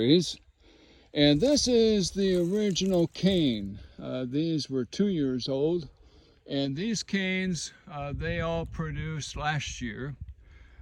And this is the original cane. These were 2 years old, and these canes, they all produced last year.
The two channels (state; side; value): identical; both; correlation 1.00